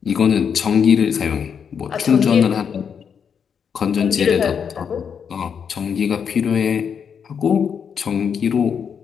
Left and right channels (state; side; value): quieter; right; 7.1 dB